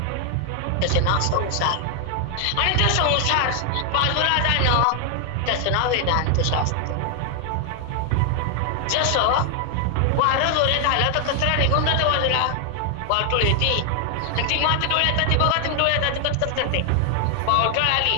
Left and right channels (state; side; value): different; both; correlation 0.00